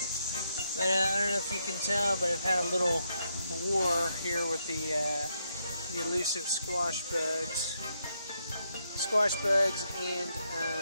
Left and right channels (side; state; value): both; inverted; correlation -0.79